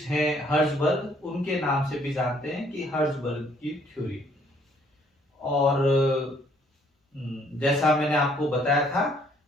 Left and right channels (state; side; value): normal; both; correlation 0.64